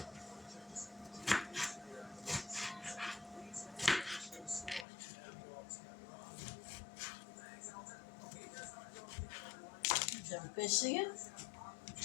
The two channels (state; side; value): drops out; right; at 4.9 s